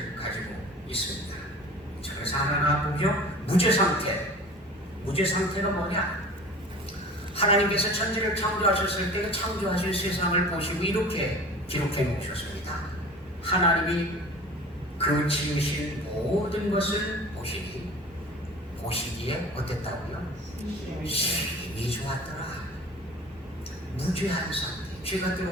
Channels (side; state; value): both; normal; correlation 0.41